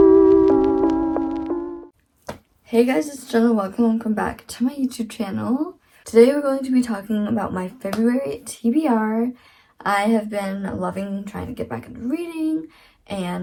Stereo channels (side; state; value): both; identical; correlation 1.00